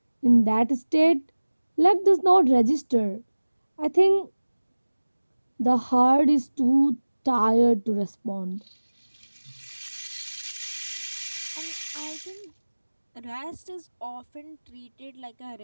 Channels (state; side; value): inverted; both; correlation -1.00